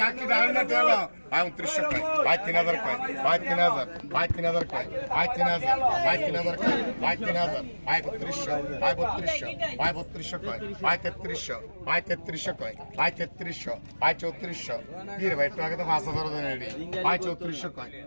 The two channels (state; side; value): inverted; both; correlation -1.00